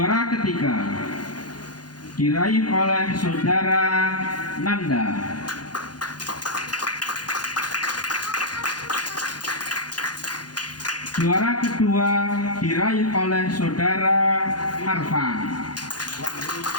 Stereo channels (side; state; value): right; late; 0.69 ms